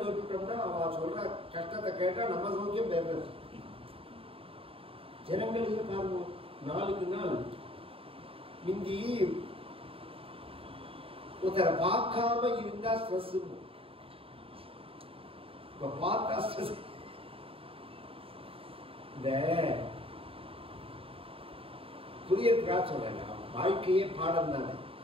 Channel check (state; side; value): late; left; 0.27 ms